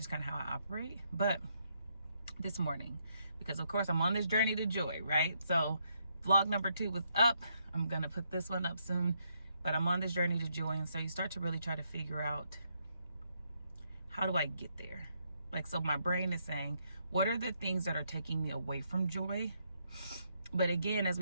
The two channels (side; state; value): both; inverted; correlation -0.76